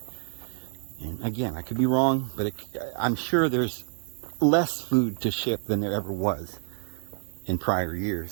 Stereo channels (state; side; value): silent; left; 59 dB below the other